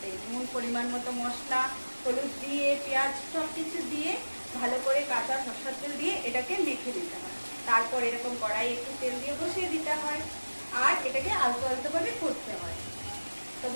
নুন পরিমাণ মতো মশলা, হলুদ দিয়ে, পেঁয়াজ সব কিছু দিয়ে ভালো করে কাঁচা সরষের তেল দিয়ে এটাকে মেখে দিতে হয়। তারপর এরকম কড়াই একটু তেল দিয়ে বসিয়ে দিতে হয় আর এটাকে আলতো আলতো ভাবে করতে হয়। তো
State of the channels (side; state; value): both; inverted; correlation -1.00